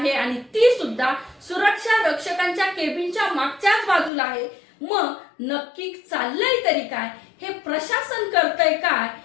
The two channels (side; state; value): right; drops out; at 4.1 s